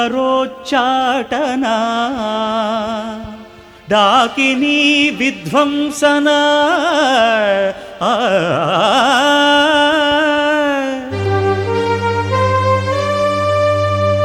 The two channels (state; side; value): identical; both; correlation 1.00